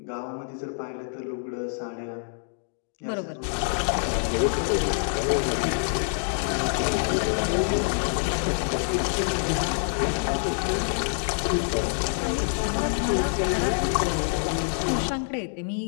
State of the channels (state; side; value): silent; right; digital silence